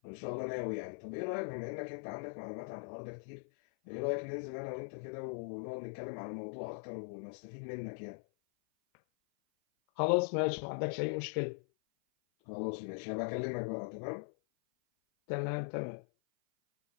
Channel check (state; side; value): silent; right; 51 dB below the other